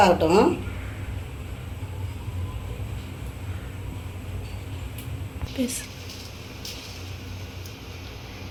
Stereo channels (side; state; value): both; identical; correlation 1.00